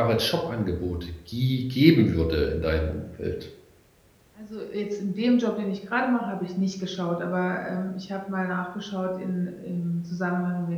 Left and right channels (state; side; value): identical; both; correlation 1.00